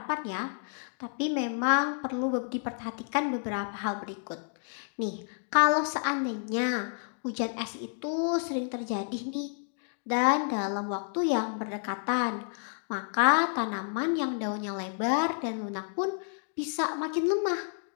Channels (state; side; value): silent; right; 58 dB below the other